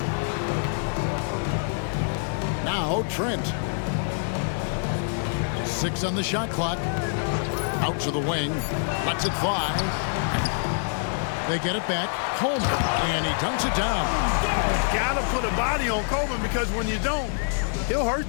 Now Trent. 6 on the shot clock. Out to the wing. Lets it fly. They get it back. Coleman. And he dunks it down. Gotta put a body on Coleman, because when you don't, he'll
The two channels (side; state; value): right; silent; digital silence